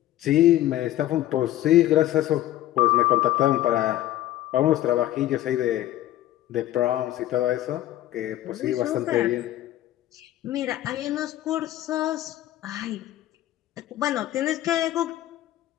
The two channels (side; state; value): right; quieter; 14.0 dB